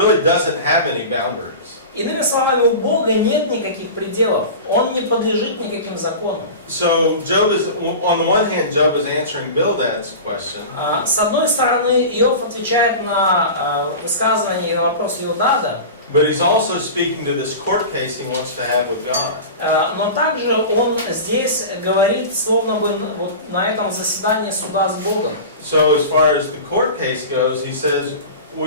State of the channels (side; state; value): both; inverted; correlation -0.32